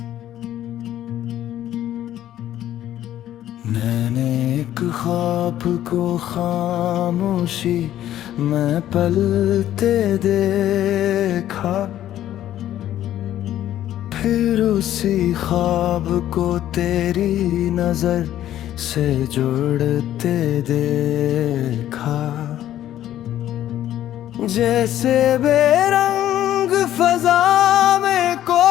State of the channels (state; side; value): quieter; right; 12.3 dB